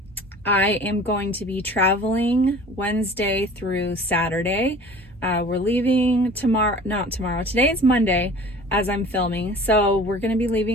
I am going to be traveling Wednesday through Saturday. We're leaving not tomorrow, today is Monday as I'm filming. So we're going to be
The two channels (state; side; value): normal; both; correlation 0.44